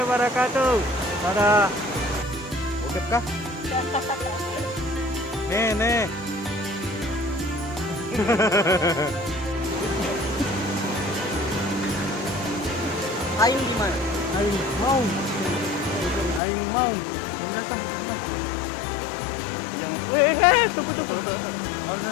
wabarakatuh. Dadah. Oke kah? Nih. Ayo gimana? Ayo mau. Yang datang. Jangan. Weh, tunggu.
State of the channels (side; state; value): right; drops out; at 16.4 s